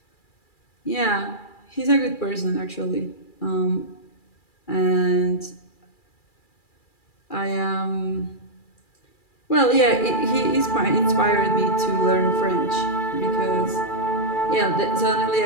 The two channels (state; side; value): late; right; 2.3 ms